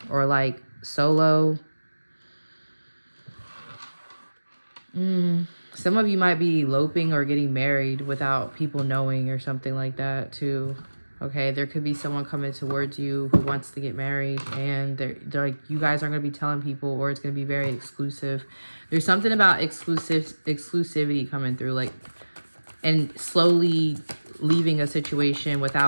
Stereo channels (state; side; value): inverted; both; correlation -1.00